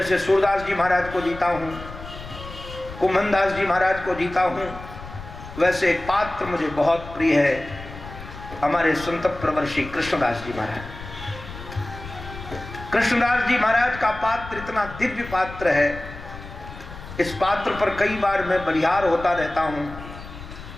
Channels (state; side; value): noise; left; rumble, 13 dB below the sound